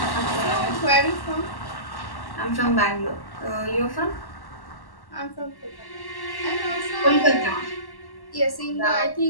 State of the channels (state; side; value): late; right; 1.1 ms